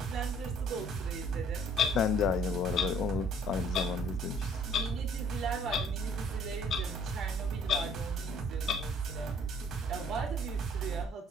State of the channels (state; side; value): normal; both; correlation 0.58